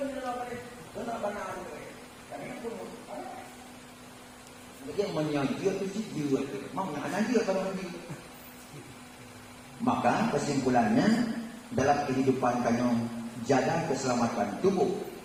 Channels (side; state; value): both; identical; correlation 1.00